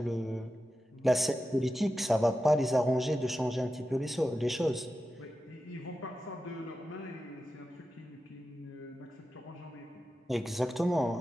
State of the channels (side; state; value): both; normal; correlation 0.91